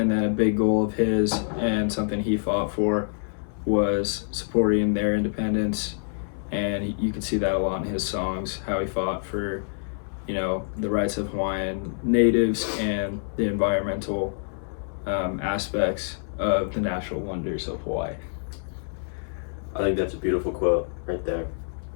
then a big goal of his and something he fought for was supporting their independence. And you can see that a lot in his songs, how he fought for, the rights of Hawaiian natives and the environmental aspects of the natural wonders of Hawaii. I think that's a beautiful quote right there.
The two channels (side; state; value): right; silent; 61 dB below the other